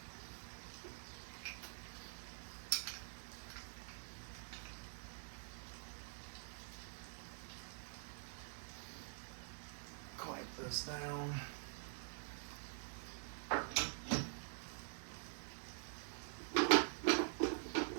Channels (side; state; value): left; silent; digital silence